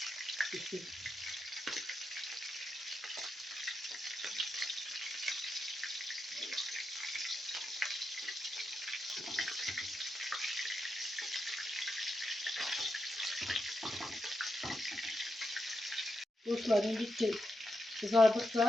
pişir. Dostlarım bitti.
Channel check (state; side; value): normal; both; correlation 0.85